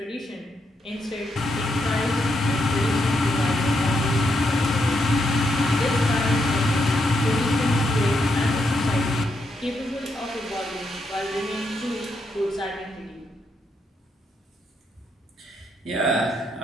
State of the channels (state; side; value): normal; both; correlation 0.80